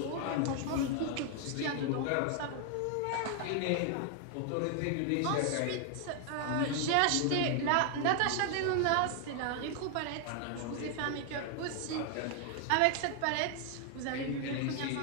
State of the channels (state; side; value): different; both; correlation 0.00